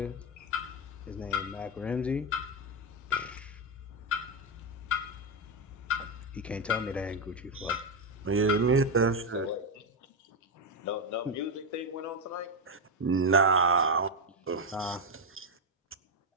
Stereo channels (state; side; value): normal; both; correlation 0.07